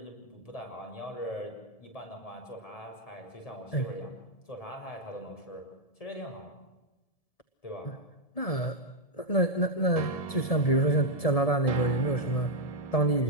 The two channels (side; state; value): right; late; 1.7 ms